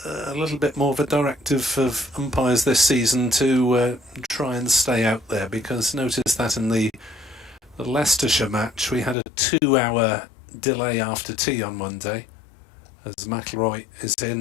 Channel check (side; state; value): right; drops out; at 9.2 s